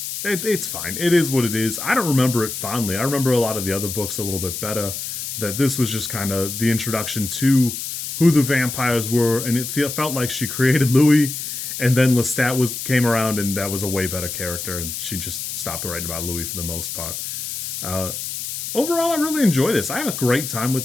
it's fine. It is what it is. I don't remember it fondly. I remember a lot of the other books a little bit better, that this was just kind of the introduction to who the vampires were, and it felt like she created Louis, and then Lestat came around, and that was a way better character, and she just stopped writing about Louis for the most part. Overall, I really enjoy this. I have a great time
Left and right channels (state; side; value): noise; left; hiss, 6 dB below the sound